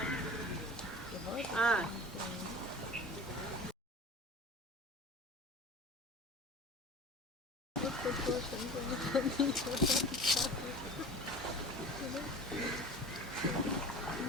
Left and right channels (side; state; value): both; normal; correlation 0.38